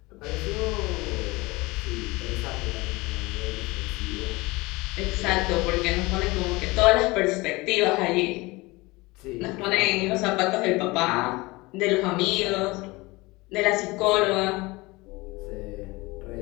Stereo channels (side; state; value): right; quieter; 22.7 dB